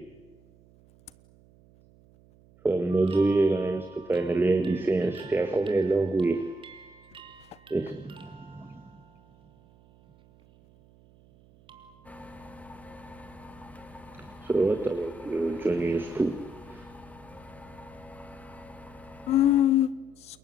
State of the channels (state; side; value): noise; right; hum, 27 dB below the sound